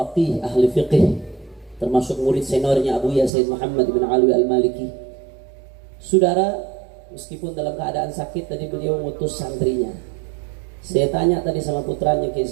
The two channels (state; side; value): drops out; left; at 3.3 s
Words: ahli fiqih, termasuk murid seniornya Abu Sayyid Muhammad bin Ali Al-Maliki. Saudara, meskipun dalam keadaan sakit, tadi beliau ngutus santrinya. Saya tanya tadi sama putranya Kiai